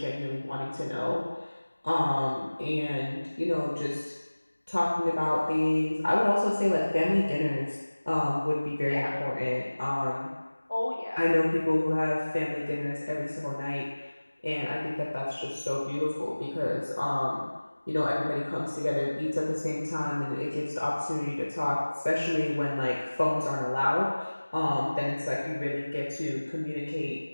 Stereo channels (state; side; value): inverted; both; correlation -1.00